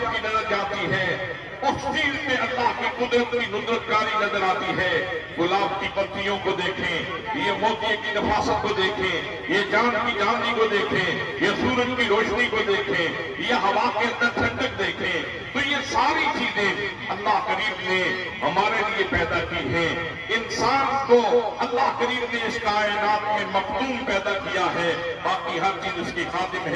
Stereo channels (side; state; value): both; identical; correlation 1.00